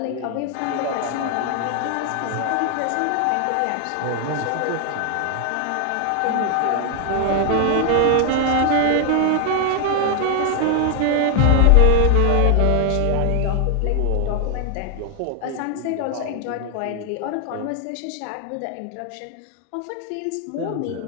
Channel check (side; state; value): both; different; correlation 0.00